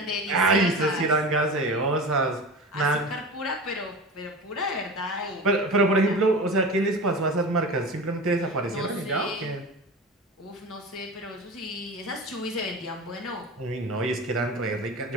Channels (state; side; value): normal; both; correlation 0.31